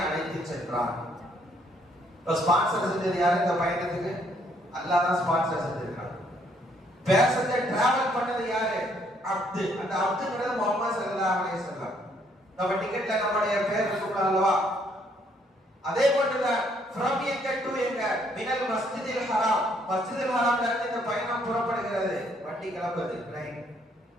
அழைத்து சென்றான். இப்ப ஸ்பான்சர் செஞ்சது யாரு இந்த பயணத்துக்கு? அல்லாஹ் தான் ஸ்பான்சர் செஞ்சிருக்கான். பேசஞ்சர் டிராவல் பண்ணது யாரு? அப்து. அந்த அப்துங்கிறது முஹம்மது ஸல்லல்லாஹு அலைஹி வஸல்லம். நம்ம டிக்கெட்ல நம்மளுடைய பேர் இருக்கும் அல்லவா? அதே போன்றுதான் ஃப்ரம் எங்க டு எங்க, மினல் மஸ்ஜிதில் ஹராம், மஸ்ஜிதுல் ஹராம்ல இருந்து இந்த பயணம் புறப்படுகிறது. வண்டி கிளம்புது.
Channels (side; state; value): both; normal; correlation 0.68